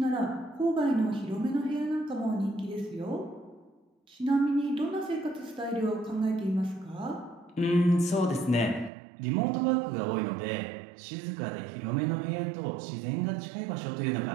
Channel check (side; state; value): left; drops out; at 8.9 s